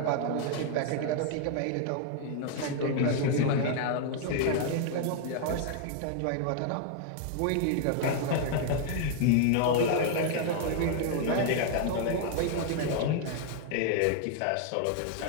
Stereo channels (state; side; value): different; both; correlation 0.00